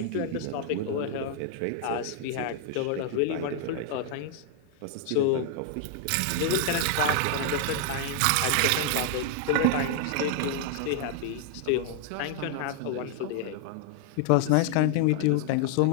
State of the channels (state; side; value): different; both; correlation 0.00